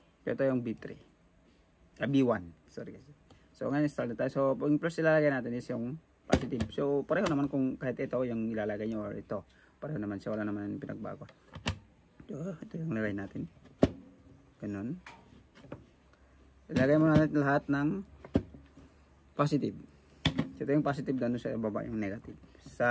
ito yung B3. B1. Sorry guys. So ngayon install na tayo. So yung plus ilalagay natin is yung positive. So pareho naman kung kahit ito yung ilalagay nyo or ito. Pareho naman siya. Wala naman pinagbago. Ito yung lagay natin. Ganun. Ilagay mo natin lahat ng positive. So, ito yung positive doon sa baba yung negative.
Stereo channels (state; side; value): identical; both; correlation 1.00